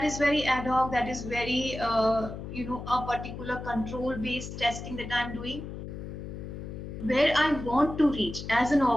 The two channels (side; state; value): left; noise; hum, 9 dB below the sound